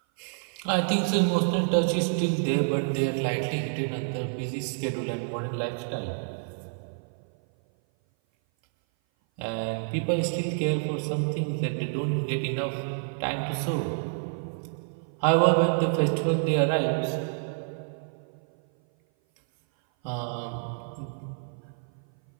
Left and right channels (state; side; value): silent; left; 56 dB below the other